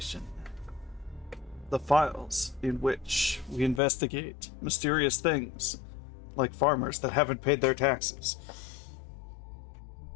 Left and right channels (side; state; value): right; drops out; at 3.8 s